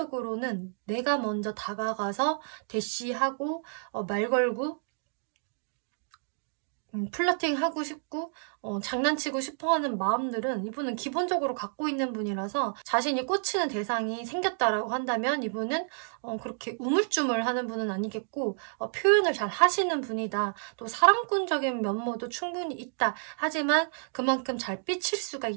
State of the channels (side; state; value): left; silent; digital silence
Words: 내가 먼저 다가가서 대시하고 말 걸고 플러팅하고 싶고 장난치고 싶어하는 마음들은 이분은 기본적으로 갖고 있는 분이라서 자신이 꽂히는 대상이 생겼다라고 한다면 이분은 그렇게 우물쭈물하는 분은 아니겠고 표현을 잘 하시는 분이다. 또 사랑꾼적인 면모도 충분히 있다. 하지만 그만큼 잘 삐칠 수가